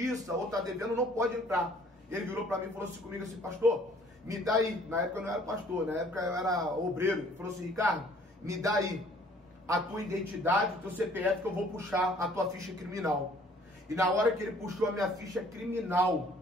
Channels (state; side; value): normal; both; correlation 0.57